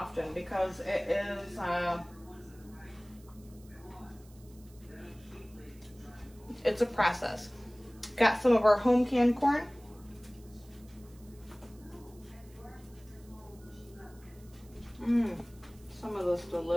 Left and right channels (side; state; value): right; noise; hiss, 27 dB below the sound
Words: because it is it's a process. Got some of our home canned corn. Some of this